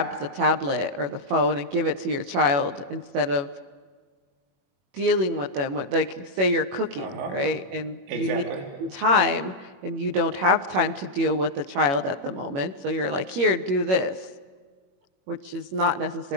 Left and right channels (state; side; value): late; left; 21 ms